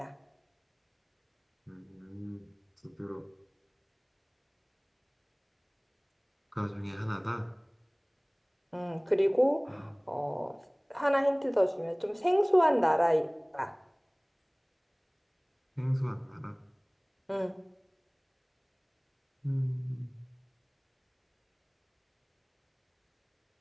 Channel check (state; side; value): identical; both; correlation 1.00